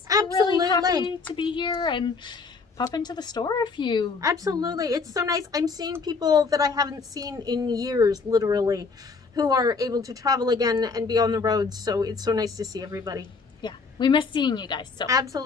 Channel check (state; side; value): quieter; right; 4.6 dB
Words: Absolutely. Really happy to be here and pop into the store if you... Absolutely. It's so nice. I'm seeing people that I haven't seen in years, literally, who are able to travel again and be on the road. So it's so nice to see everybody. Yeah, we miss seeing you guys. So